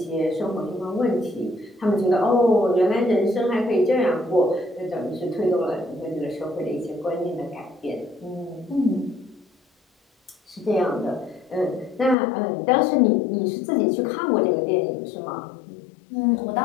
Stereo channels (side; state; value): right; drops out; at 12.2 s